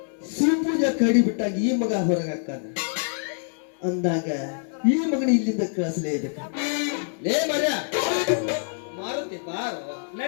ಸಿಂಪೂಜ ಕಡಿ ಬಿಟ್ಟಾಗ ಈ ಮಗ ಹೊರಗೆ ಹಾಕಾನ ಅಂದಾಗ ಈ ಮಗನ ಇಲ್ಲಿಂದ ಕಳಿಸಲೇಬೇಕು ಲೇ ಮರ್ಯ ಮಾರುತಿ ಬಾರ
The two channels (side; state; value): right; silent; 59 dB below the other